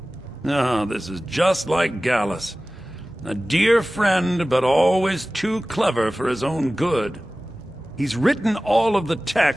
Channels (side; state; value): both; normal; correlation 0.97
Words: Oh, this is just like Gallus. A dear friend, but always too clever for his own good. He's written all of the